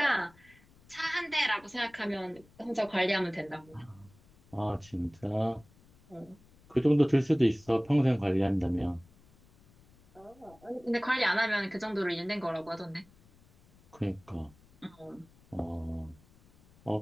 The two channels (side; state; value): left; noise; rumble, 28 dB below the sound